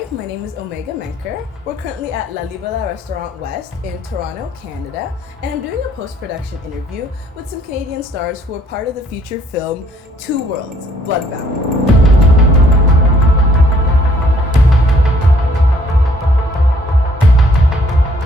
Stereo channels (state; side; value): normal; both; correlation 0.63